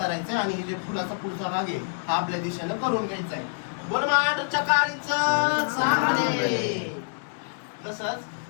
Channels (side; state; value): right; silent; digital silence